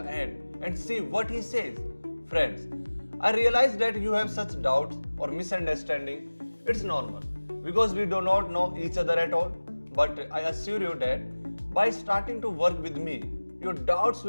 end and see what he says. Friends, I realize that you have such doubts or misunderstanding. It's normal because we do not know each other at all. But I assure you that by starting to work with me, your doubts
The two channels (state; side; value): inverted; both; correlation -1.00